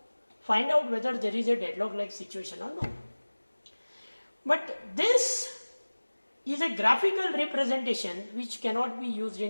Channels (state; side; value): inverted; both; correlation -1.00